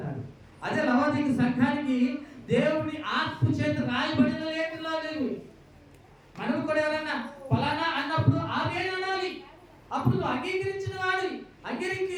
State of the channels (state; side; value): identical; both; correlation 1.00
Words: అదే లవోదియ సంఘానికి దేవుని ఆత్మ చేత రాయబడిన లేఖనాలు లేవు. మనం కూడా ఎవరన్నా ఫలానా అన్నప్పుడు ఆమేన్ అనాలి. అప్పుడు నువ్వు అంగీకరించిన వాడి,